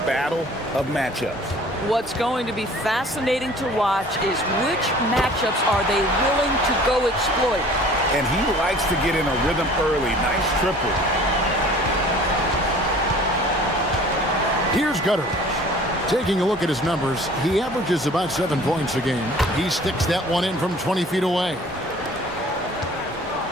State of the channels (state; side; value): normal; both; correlation 0.49